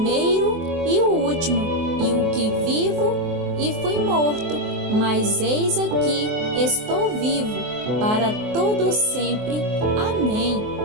e o último, e o que vivo e fui morto, mas eis aqui estou vivo para todo sempre. Amém.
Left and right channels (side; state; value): left; late; 24 ms